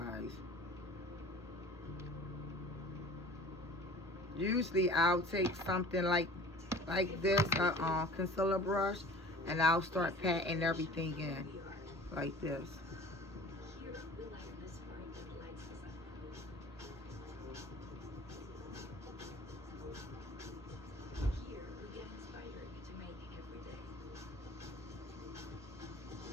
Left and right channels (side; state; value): both; normal; correlation 0.43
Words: Usually I'll take something like this, concealer brush, and I'll start patting everything in like this. Here, we like this part that lights us up. Here, we get inspired to make every day.